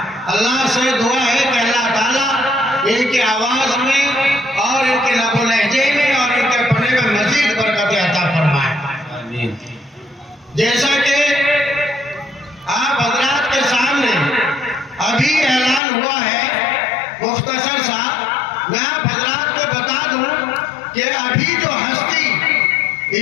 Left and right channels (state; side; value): drops out; right; at 15.8 s